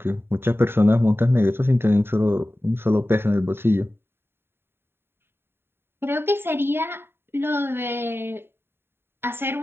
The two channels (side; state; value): left; late; 0.11 ms